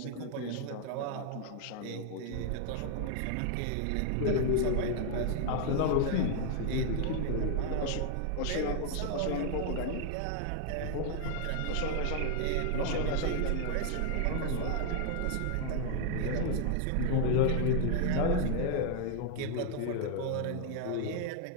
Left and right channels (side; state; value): both; different; correlation 0.00